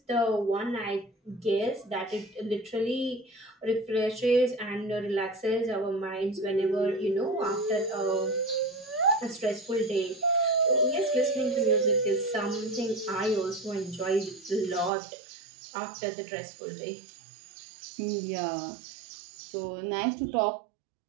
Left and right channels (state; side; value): drops out; left; at 14.9 s